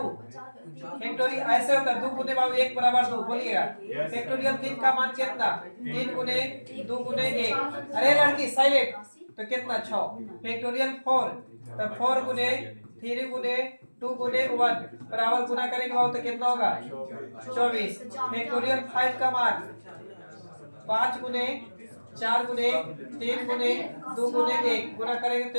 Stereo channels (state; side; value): inverted; both; correlation -1.00